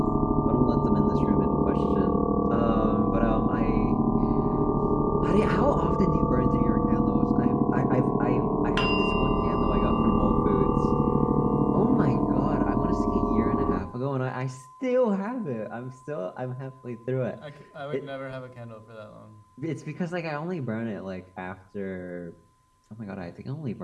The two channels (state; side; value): identical; both; correlation 1.00